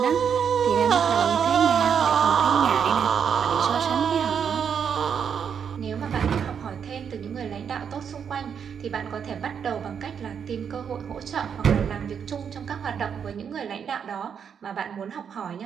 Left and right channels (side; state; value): left; quieter; 7.4 dB